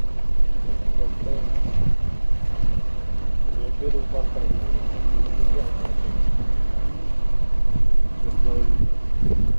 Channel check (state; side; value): inverted; both; correlation -1.00